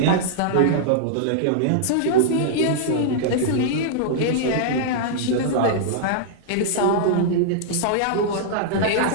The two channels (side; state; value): both; different; correlation -0.02